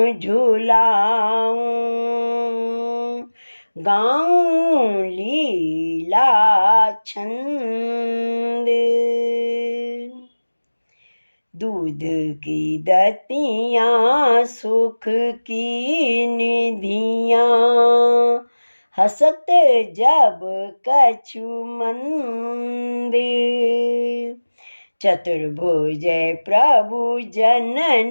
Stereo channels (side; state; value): both; inverted; correlation -1.00